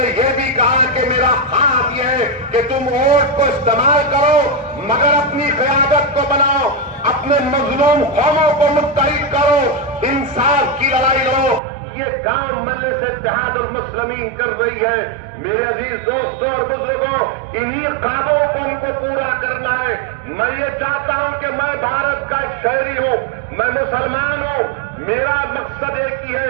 यह भी कहा कि मेरा ख्वाब यह है कि तुम वोट को इस्तेमाल करो, मगर अपनी क़यादत को बनाओ, अपने मजलूम कौमों को मुत्तहिद करो, इंसाफ की लड़ाई लो। ये काम मजलिस इत्तेहाद और मुस्लिमीन कर रही है। मेरे अजीज दोस्तों और बुजुर्गों, इन्हीं ख्वाबों को हमको पूरा करना है। मैं ये चाहता हूं कि मैं भारत का एक शहरी हूं, मैं मुसलमान हूं, मेरा मकसद एक ही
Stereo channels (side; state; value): left; drops out; at 11.6 s